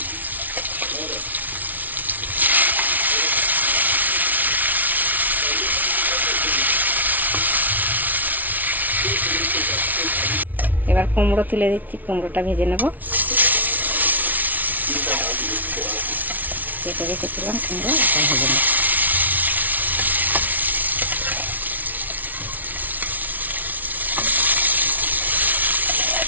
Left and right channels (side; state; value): left; late; 0.078 ms